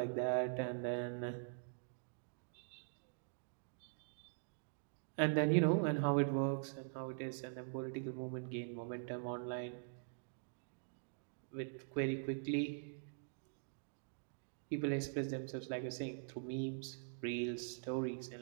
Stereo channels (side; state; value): left; silent; digital silence